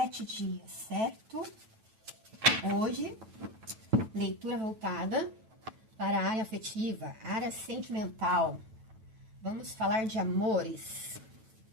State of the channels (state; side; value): late; left; 9.1 ms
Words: dias, certo? Hoje, leitura voltada para a área afetiva, área sentimental. Vamos falar de amores.